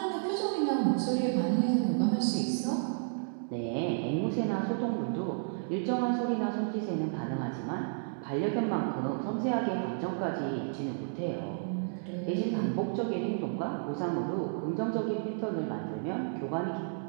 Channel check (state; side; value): silent; left; digital silence